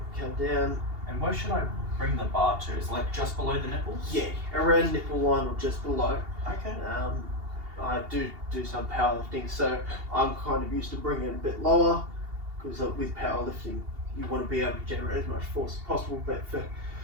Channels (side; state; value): left; late; 2.8 ms